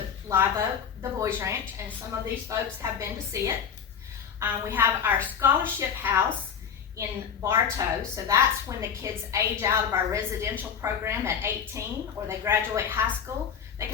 Live Oak, the Boys Ranch, and some of these folks have been to see it. We have our scholarship house in Bartow, so that's when the kids age out of our residential program at 18 or they graduate high school. They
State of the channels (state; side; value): quieter; right; 7.5 dB